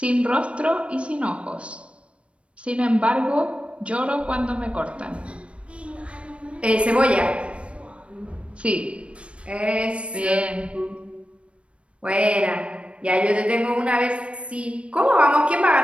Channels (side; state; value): left; late; 0.060 ms